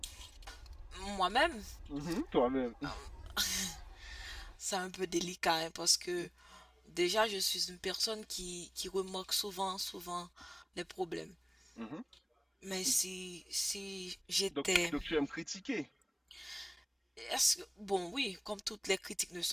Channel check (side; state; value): both; identical; correlation 1.00